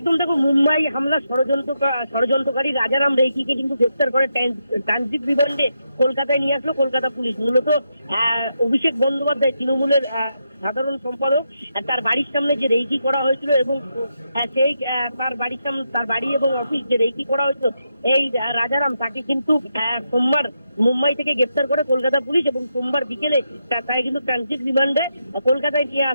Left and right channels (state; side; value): inverted; both; correlation -0.84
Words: দেখো, মুম্বাই হামলা ষড়যন্ত্রকারী রাজারাম রেইকিকে কিন্তু গ্রেফতার করে ট্রানজিট রিমান্ডে কলকাতায় নিয়ে আসলো কলকাতা পুলিশ। মূলত অভিষেক বন্দ্যোপাধ্যায় তৃণমূলের সাধারণ সম্পাদক, তার বাড়ির সামনে যে রেইকি করা হয়েছিল এবং সেই তার বাড়ির সামনে, তার বাড়ি এবং অফিস যে রেইকি করা হয়েছিল, এই রাজারাম, তাকে কিন্তু সোমবার মুম্বাই থেকে গ্রেফতার করে কলকাতা পুলিশ এবং সোমবার বিকেলে তাই কিন্তু ট্রানজিট রিমান্ডে কলকাতায় নিয়ে